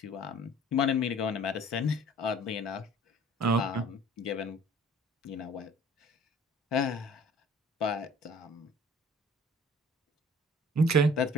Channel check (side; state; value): both; normal; correlation 0.50